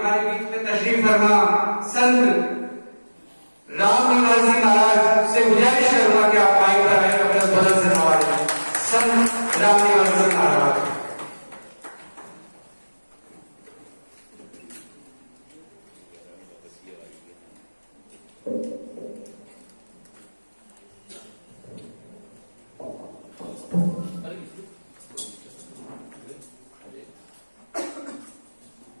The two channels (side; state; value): both; inverted; correlation -1.00